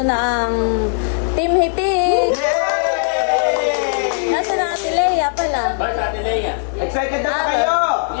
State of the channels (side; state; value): right; silent; digital silence